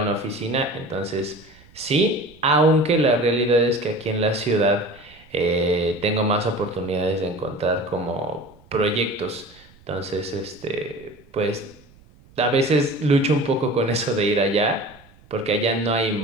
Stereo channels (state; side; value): noise; right; rumble, 27 dB below the sound